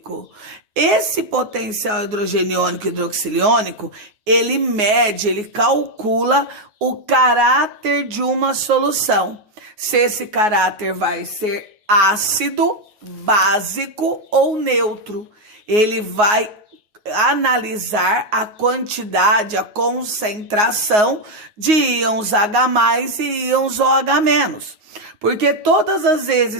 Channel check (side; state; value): left; late; 9.5 ms